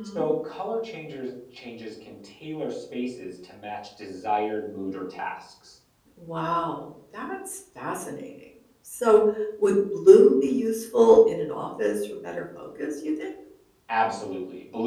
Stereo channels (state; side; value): identical; both; correlation 1.00